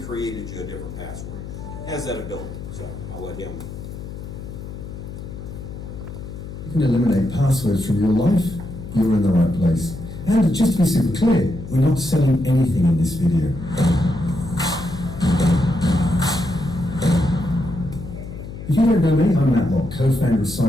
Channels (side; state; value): left; noise; hum, 10 dB below the sound